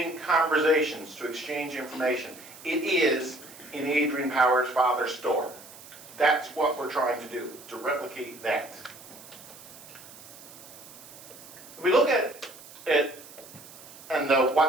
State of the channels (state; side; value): noise; right; hiss, 18 dB below the sound